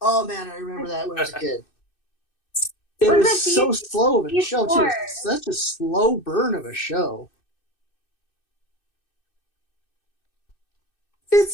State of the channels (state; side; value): late; right; 2.6 ms